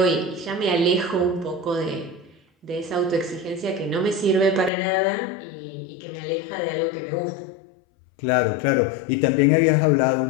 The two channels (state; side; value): drops out; right; at 4.7 s